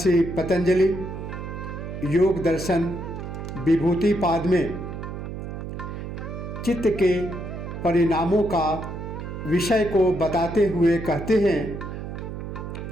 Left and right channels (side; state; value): right; noise; hum, 7 dB below the sound